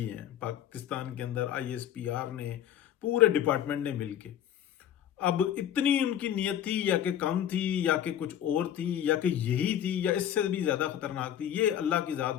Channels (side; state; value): right; quieter; 10.3 dB